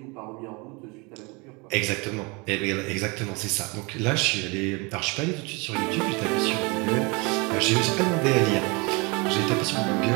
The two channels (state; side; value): quieter; left; 28.5 dB